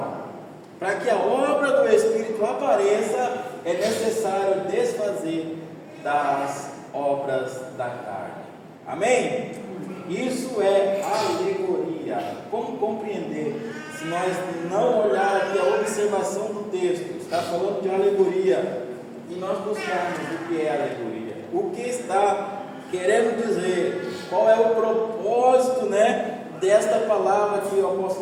Para que a obra do Espírito apareça, é necessário desfazer das obras da carne. Amém? Isso é alegoria. Como compreender? Se nós não olhar aqui a observação do texto, está falando de alegoria, e nós buscarmos o que é alegoria, o que está querendo dizer, qual é o propósito, né, desta palavra que o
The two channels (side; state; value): both; identical; correlation 1.00